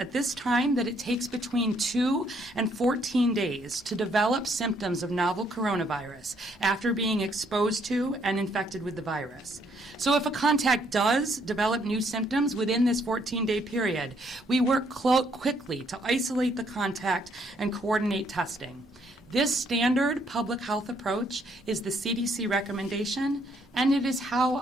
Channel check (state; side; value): normal; both; correlation 0.69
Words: this time that it takes between 2 and 14 days to develop symptoms of novel coronavirus after being exposed to and infected with the virus. So if a contact does develop new symptoms within this 14-day period, we work quickly to isolate the contact and coordinate testing. This standard public health approach is the CDC recommendation, and it is how